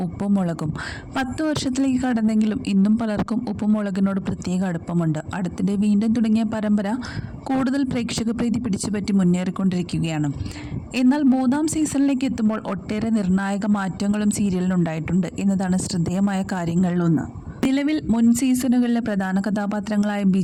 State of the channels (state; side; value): identical; both; correlation 1.00